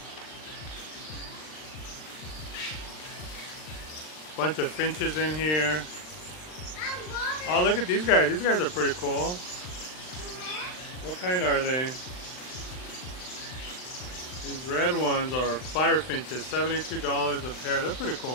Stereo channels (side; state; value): right; late; 39 ms